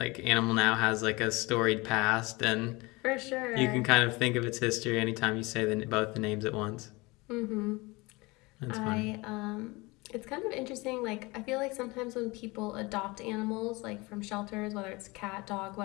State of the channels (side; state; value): right; quieter; 24.0 dB